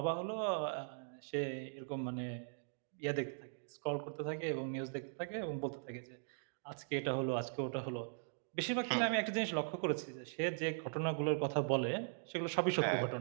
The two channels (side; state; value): left; silent; digital silence